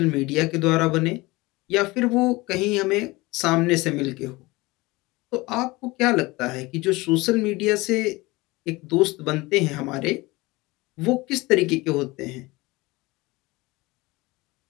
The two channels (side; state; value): right; quieter; 22.0 dB